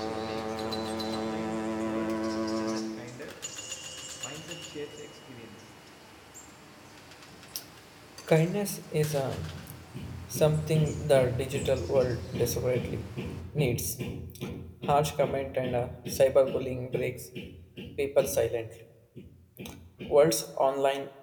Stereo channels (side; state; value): both; identical; correlation 1.00